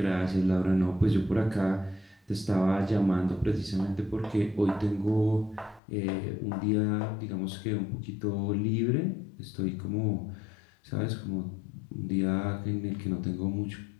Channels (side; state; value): right; drops out; at 5.8 s